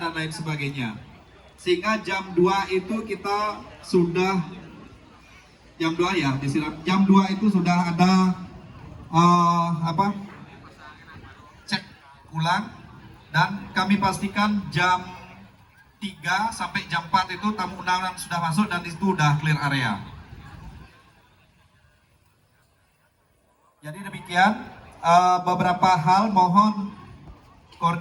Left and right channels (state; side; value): identical; both; correlation 1.00